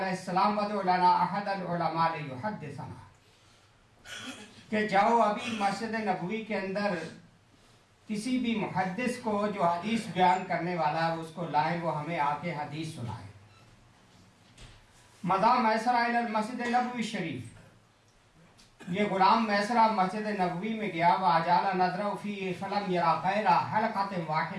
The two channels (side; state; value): both; identical; correlation 1.00